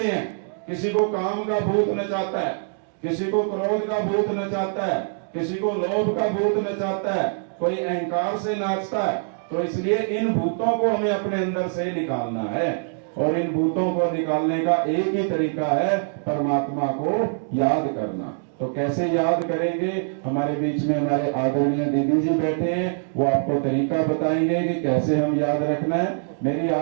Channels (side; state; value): left; silent; digital silence